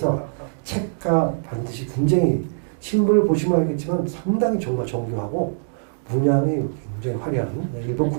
책과 반드시 굉장히 신문을 보시면 알겠지만 상당히 정말 정교하고 문양이 굉장히 화려한 일본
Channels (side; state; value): left; silent; digital silence